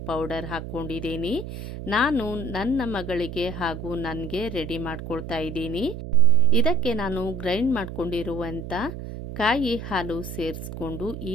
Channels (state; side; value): noise; right; hum, 8 dB below the sound